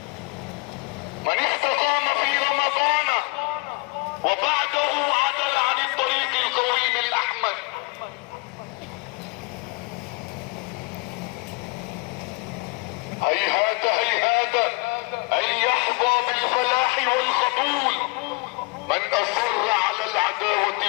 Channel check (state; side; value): quieter; right; 27.7 dB